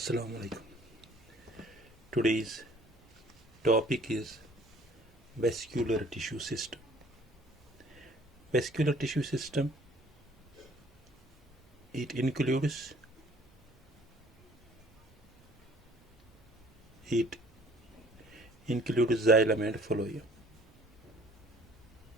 alaikum. Today's topic is vascular tissue system. Vascular tissue system, it includes xylem and phloem.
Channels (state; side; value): normal; both; correlation 0.55